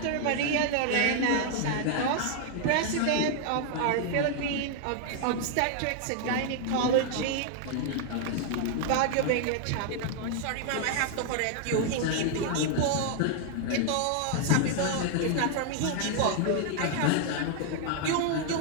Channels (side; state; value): both; different; correlation 0.00